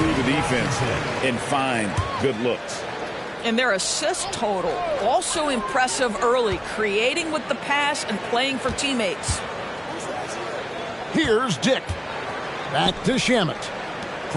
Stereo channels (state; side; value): identical; both; correlation 1.00